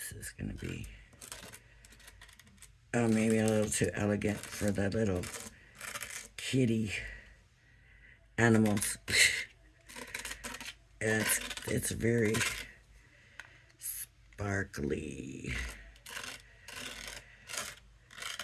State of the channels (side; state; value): both; identical; correlation 1.00